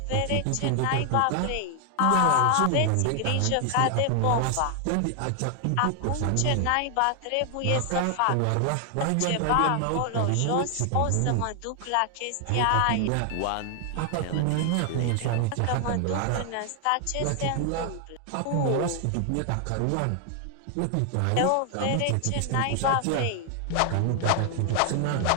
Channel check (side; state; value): both; different; correlation 0.00